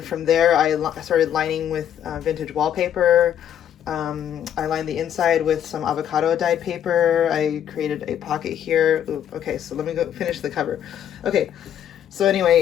from there I started lining with vintage wallpaper. I lined the inside with some avocado dyed paper. I created a pocket here. Ooh, okay, so let me go finish the cover. Okay, so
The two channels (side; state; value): right; quieter; 9.9 dB